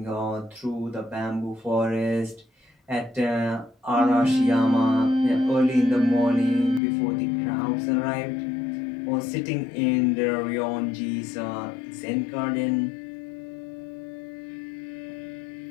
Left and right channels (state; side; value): drops out; right; at 6.8 s